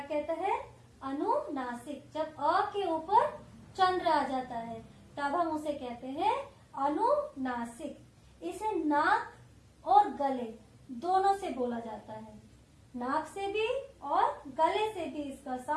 कहता है? अनुनासिक। जब अ के ऊपर चंद्र आ जाता है तब हम उसे कहते हैं अनुनासिक। इसे नाक और गले दोनों से बोला जाता है। नाक से भी और गले से भी इसका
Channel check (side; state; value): both; identical; correlation 1.00